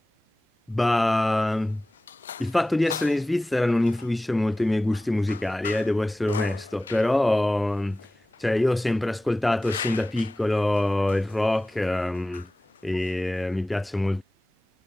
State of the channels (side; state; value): both; normal; correlation 0.97